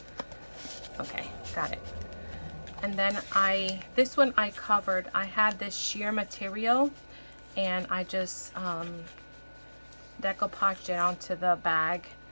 Okay, got it. And then this one I covered. I had this sheer material, and I just decoupaged it onto the bag,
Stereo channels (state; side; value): inverted; both; correlation -1.00